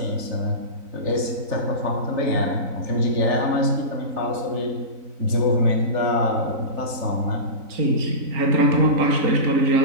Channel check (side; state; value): left; late; 3.9 ms